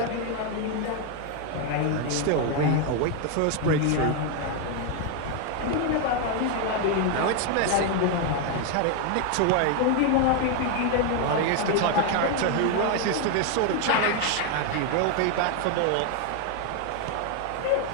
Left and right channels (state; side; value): different; both; correlation 0.01